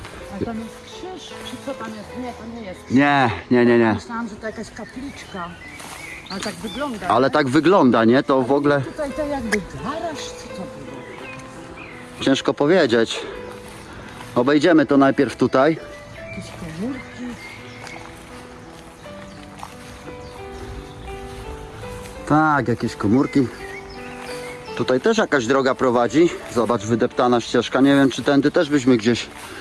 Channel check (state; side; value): identical; both; correlation 1.00